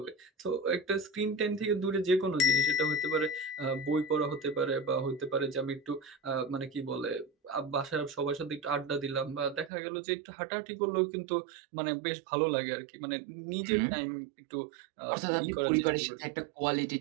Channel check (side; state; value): left; drops out; at 9.7 s